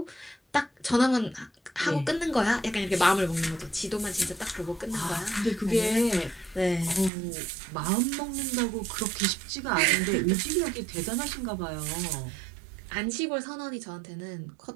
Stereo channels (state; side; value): drops out; left; at 7.1 s